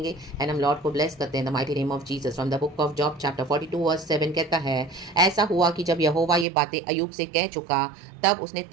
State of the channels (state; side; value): drops out; left; at 6.5 s